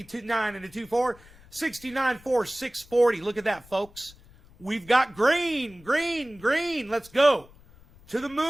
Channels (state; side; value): noise; left; rumble, 24 dB below the sound